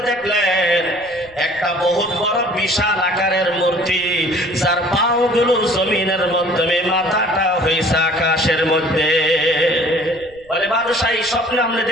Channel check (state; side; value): noise; right; rumble, 27 dB below the sound